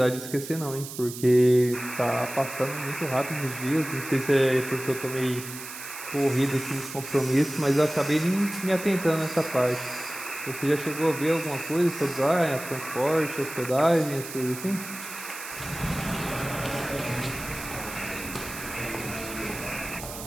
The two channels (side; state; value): right; noise; hiss, 11 dB below the sound